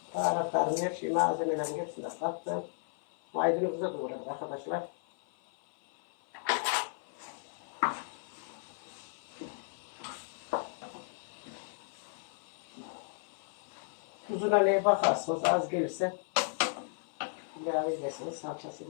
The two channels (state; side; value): silent; right; 55 dB below the other